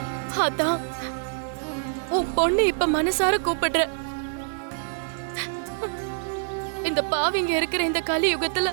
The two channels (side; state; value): left; silent; digital silence